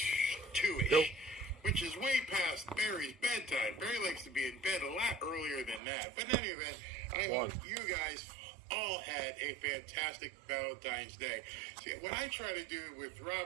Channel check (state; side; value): drops out; left; at 5.8 s